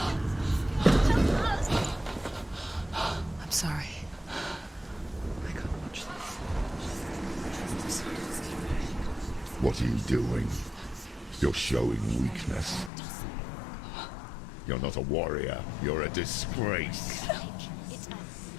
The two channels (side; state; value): right; drops out; at 12.9 s